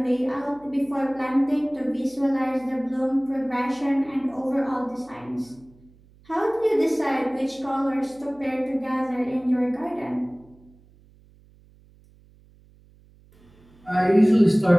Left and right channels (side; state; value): right; noise; hum, 28 dB below the sound